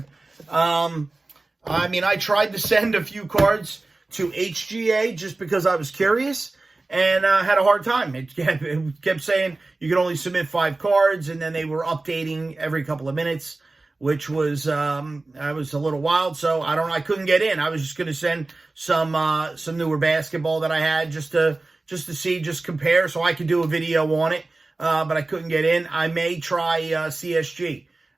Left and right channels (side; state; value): left; quieter; 3.2 dB